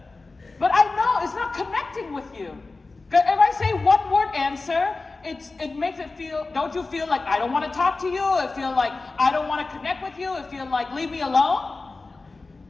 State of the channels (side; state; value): right; quieter; 3.6 dB